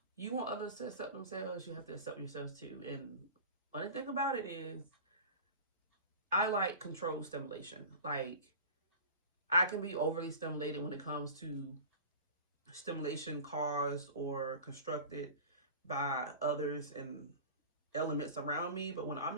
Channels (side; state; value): both; inverted; correlation -0.36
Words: You want others to accept themselves, you have to accept yourselves too. And funny thing about it is, I like controlled stimulation. Like, I can be overly stimulated when it comes to stimulation caused or constructed by others and elements around me, but when